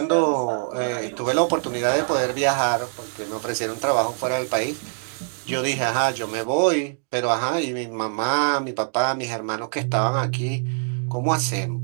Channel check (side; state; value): left; silent; digital silence